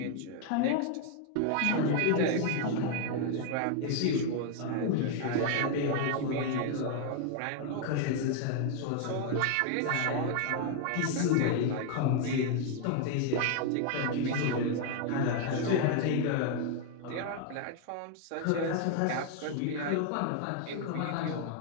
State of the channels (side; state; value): both; different; correlation 0.00